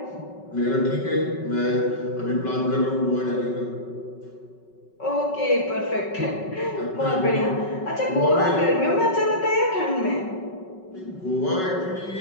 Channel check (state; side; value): late; right; 5.3 ms